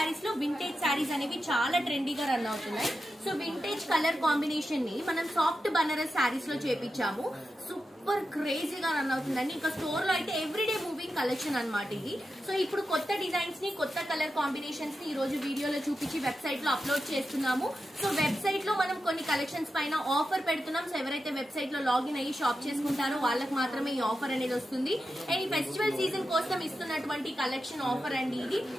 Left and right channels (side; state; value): both; normal; correlation 0.90